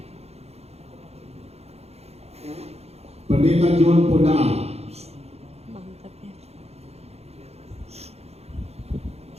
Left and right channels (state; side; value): late; left; 0.30 ms